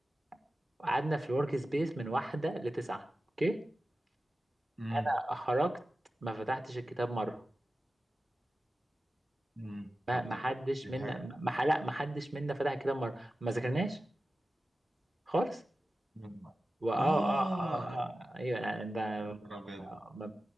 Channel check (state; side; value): normal; both; correlation 0.94